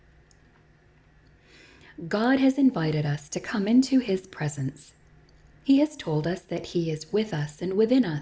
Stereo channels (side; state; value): both; identical; correlation 1.00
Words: God has invited us to come into His presence. He has told us that He is with us and within